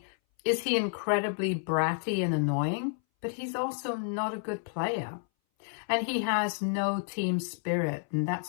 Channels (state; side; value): silent; right; 58 dB below the other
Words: is he incredibly bratty and annoying, but he's also not a good player. And he has no team spirit, and